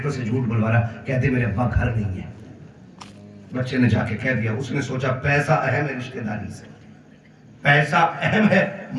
سے جھوٹ بلوا رہا, کہتے میرے ابا گھر نہیں ہے. بچے نے جا کے کہہ دیا, اس نے سوچا پیسہ اہم ہے رشتہ داری سے, پیسہ اہم ہے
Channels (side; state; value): both; identical; correlation 1.00